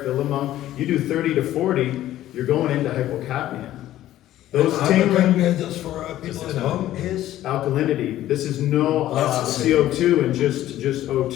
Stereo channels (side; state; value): right; quieter; 13.6 dB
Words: fill them up. You do 30 to 40, you're going into hypocapnia. Those tingling, Hypocapnia, just for people at home, is alkalinity. This is no That's the same. CO2 and just